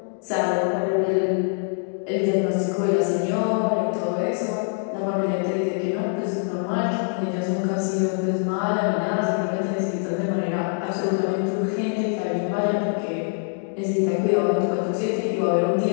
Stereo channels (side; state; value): right; silent; 63 dB below the other